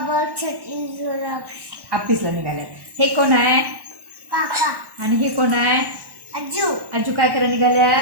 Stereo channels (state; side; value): late; left; 1.1 ms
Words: छत्री घेऊन ऑफिसला निघाले. हे कोण आहे? काका. आणि हे कोण आहे? आजू. आजू काय करायला